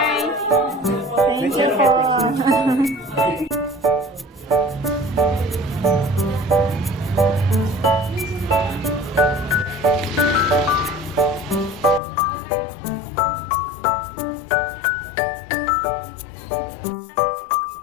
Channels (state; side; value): drops out; right; at 12.0 s